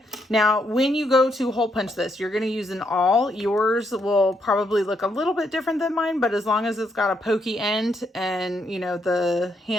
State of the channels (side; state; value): both; normal; correlation 0.76